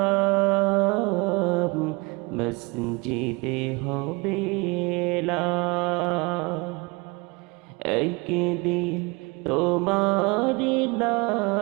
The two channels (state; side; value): quieter; left; 26.9 dB